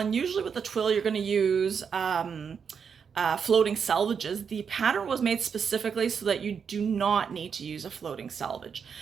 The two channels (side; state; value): left; quieter; 6.6 dB